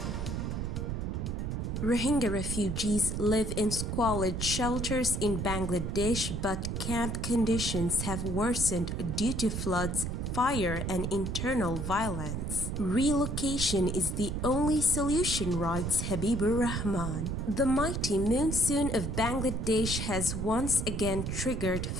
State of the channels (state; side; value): noise; right; rumble, 2 dB below the sound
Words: Rohingya refugees live in squalid shelters in Bangladesh, but camp conditions have worsened due to floods, fire, and internal violence. Relocation is the only solution, writes Habibur Rahman. The mighty monsoon of Bangladesh has once again triggered